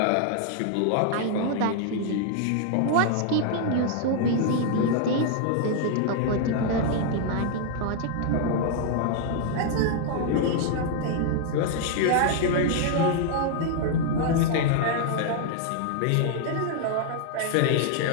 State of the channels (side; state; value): both; different; correlation 0.00